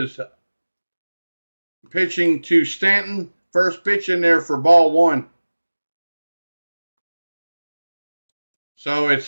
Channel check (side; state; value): both; inverted; correlation -1.00